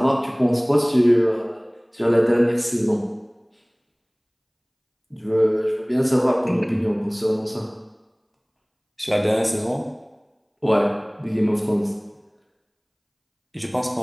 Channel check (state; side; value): identical; both; correlation 1.00